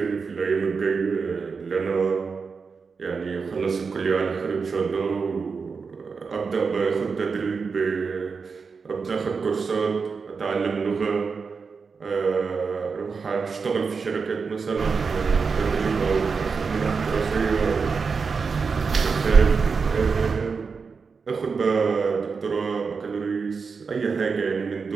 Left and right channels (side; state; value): left; quieter; 5.2 dB